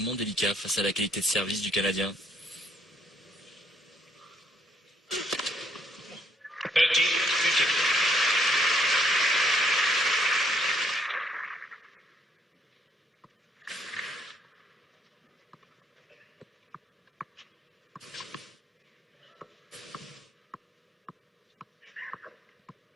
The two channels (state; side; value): normal; both; correlation 0.69